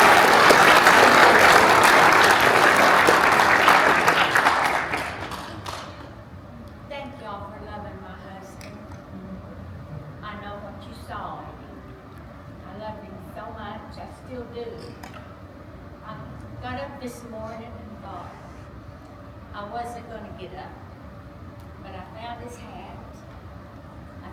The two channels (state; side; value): identical; both; correlation 1.00